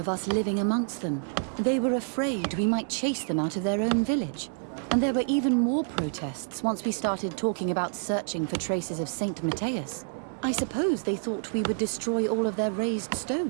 us living amongst them. They were afraid we might chase them out of their own village. And there were even more protests once we started talking about searching for traces of Saint Matthias. I suppose they thought we would destroy all of their raised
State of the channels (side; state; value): left; silent; 59 dB below the other